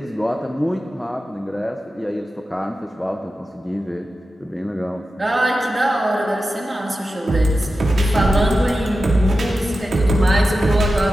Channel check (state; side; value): normal; both; correlation 0.92